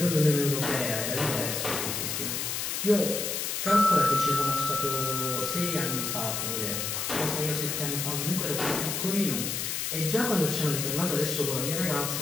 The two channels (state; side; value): noise; left; hiss, 2 dB below the sound